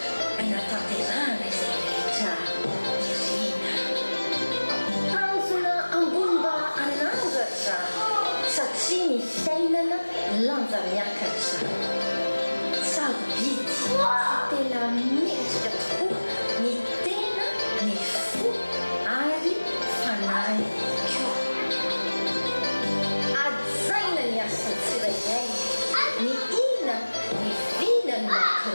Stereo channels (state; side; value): inverted; both; correlation -1.00